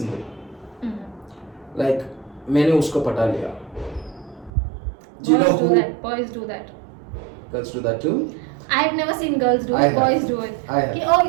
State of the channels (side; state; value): left; drops out; at 4.5 s